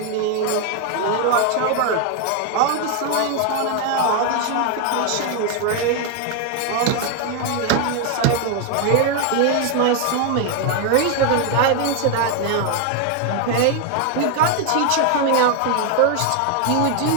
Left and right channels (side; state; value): both; different; correlation 0.01